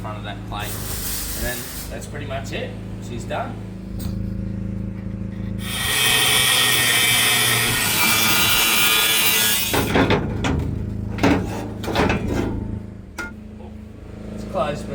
of that plate. And then that's pretty much it. She's done. It's close,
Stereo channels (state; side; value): identical; both; correlation 1.00